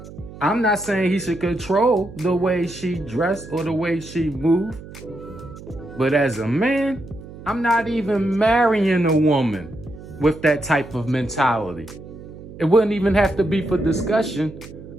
I'm not saying he should control the way she dressed or the way she moved. But as a man, I'm not even marrying a woman with that type of mentality. It wouldn't even have to be for discussion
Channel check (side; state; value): right; noise; hum, 15 dB below the sound